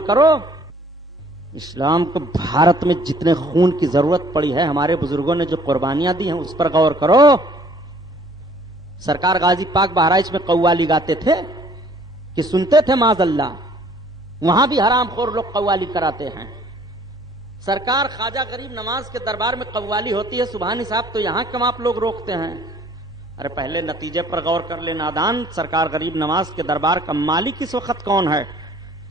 کرو۔ اسلام کو بھارت میں جتنے خون کی ضرورت پڑی ہے، ہمارے بزرگوں نے جو قربانیاں دی ہیں اس پر غور کرو۔ سرکار غازی پاک بہرائچ میں قوالی گاتے تھے کہ سنتے تھے معاذ اللہ؟ وہاں بھی حرام خور لوگ قوالی کراتے ہیں. سرکار خواجہ غریب نواز کے دربار میں قوالی ہوتی ہے سبحانی صاحب، تو یہاں کیوں آپ لوگ روکتے ہیں؟ ارے پہلے نتیجے پر غور کر لے نادان. سرکار غریب نواز کے دربار کا مالک اس وقت کون ہے؟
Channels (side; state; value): both; normal; correlation 0.57